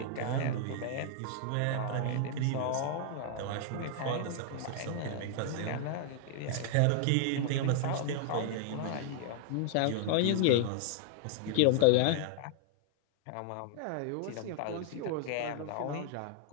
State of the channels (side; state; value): both; different; correlation 0.00